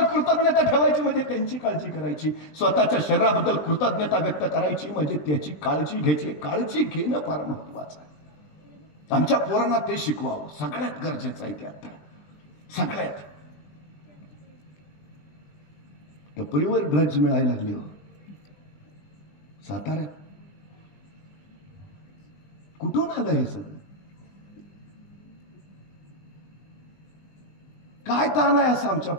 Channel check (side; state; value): right; late; 20 ms